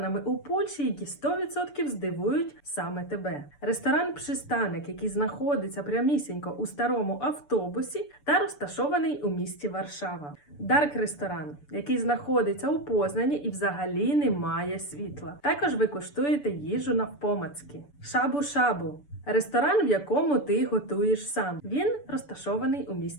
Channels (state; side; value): late; right; 6.9 ms